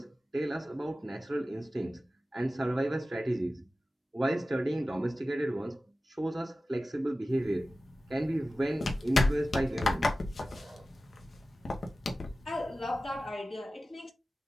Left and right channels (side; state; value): both; normal; correlation 0.95